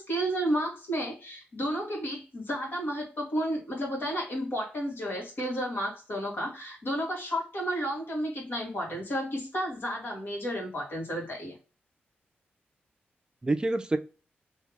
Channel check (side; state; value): both; normal; correlation 0.76